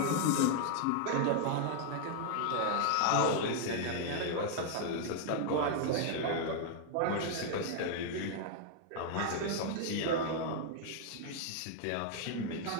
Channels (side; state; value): both; different; correlation 0.00